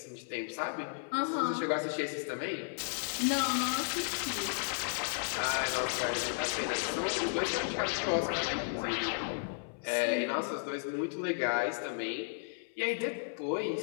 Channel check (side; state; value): right; silent; 55 dB below the other